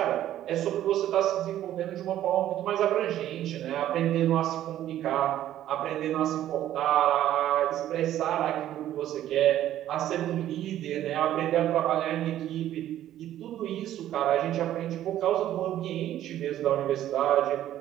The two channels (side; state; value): left; quieter; 12.4 dB